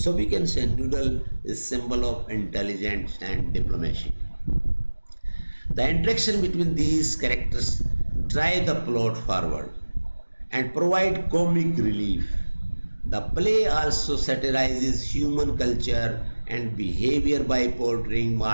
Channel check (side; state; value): both; inverted; correlation -1.00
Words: we can say Noodle is symbol of intelligence and diplomacy. The interaction between these characters drive the plot forward and provide comic relief. The play also satirizes human culture and behavior by portraying